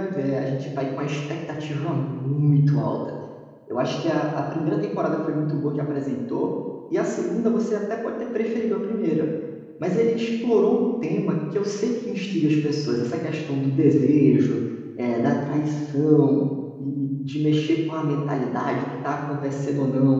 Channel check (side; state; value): both; identical; correlation 1.00